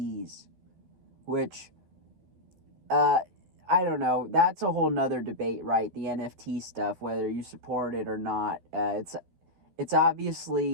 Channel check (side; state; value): left; late; 12 ms